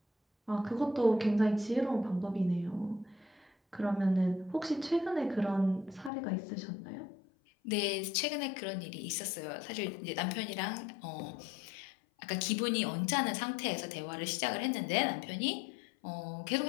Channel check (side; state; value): right; drops out; at 6.1 s